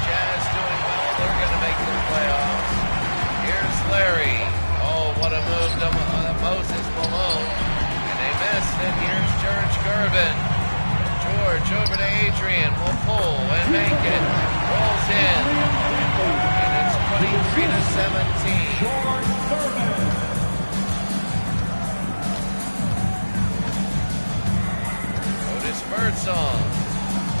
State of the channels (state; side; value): inverted; both; correlation -1.00